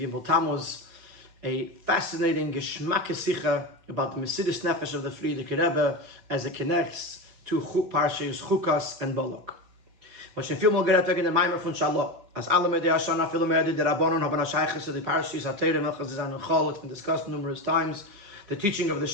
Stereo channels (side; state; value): left; late; 4.8 ms